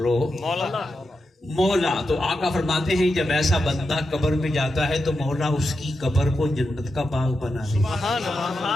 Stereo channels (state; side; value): normal; both; correlation 0.88